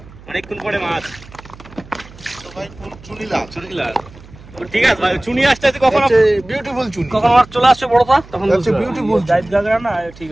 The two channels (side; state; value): right; noise; hum, 21 dB below the sound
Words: অনেকক্ষণ পরে মাছ। তো ভাই ফুল চুনিলা চুনিলা ঠিক আছে ভাই, চুনি আসতে আসতে কখন বিউটিফুল চুনি কখন মাছ চলে আসছে বড়টা, তখন আচ্ছা বিউটিফুল জাত গাগরা না, ঠিক